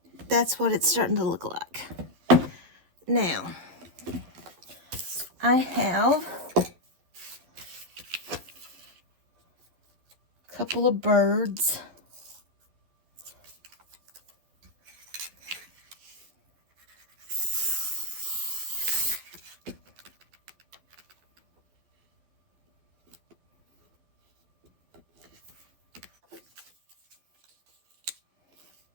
That's what it's starting to look like. Now, I have a couple of birds.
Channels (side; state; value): left; late; 12 ms